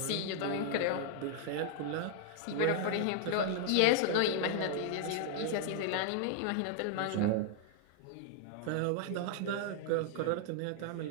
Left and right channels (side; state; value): both; different; correlation -0.01